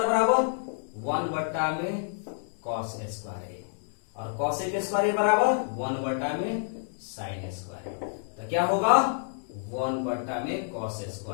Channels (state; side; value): silent; right; digital silence